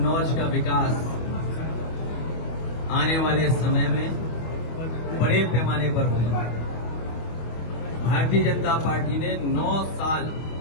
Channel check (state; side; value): late; right; 25 ms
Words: का विकास आने वाले समय में बड़े पैमाने पर होगा। भारतीय जनता पार्टी ने 9 साल